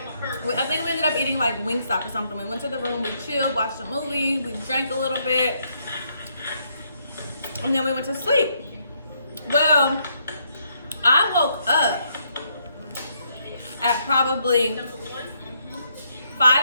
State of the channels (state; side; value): inverted; both; correlation -0.73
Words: I think we ended up eating like Wingstop or something. We went to the room, we chilled, watched a movie, we drank a little bit, and then we went to sleep. Well, I woke up at probably